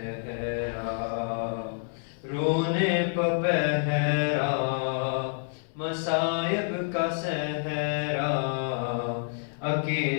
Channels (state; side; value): silent; right; 59 dB below the other